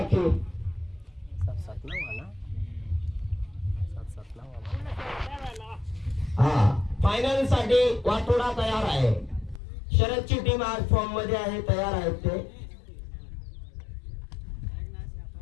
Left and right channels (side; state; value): right; drops out; at 9.6 s